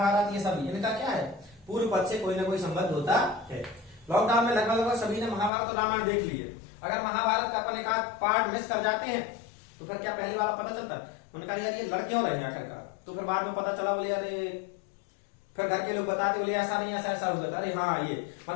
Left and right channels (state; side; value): drops out; right; at 5.5 s